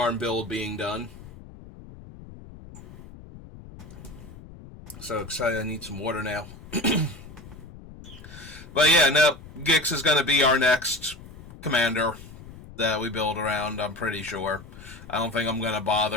build being done. So excited, I need some water now. But yeah, no, Gix is going to be our next commander that we build around, I'm pretty sure. I don't think I'm going to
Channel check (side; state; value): left; noise; rumble, 17 dB below the sound